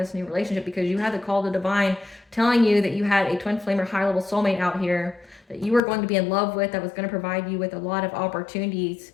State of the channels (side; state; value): right; drops out; at 5.8 s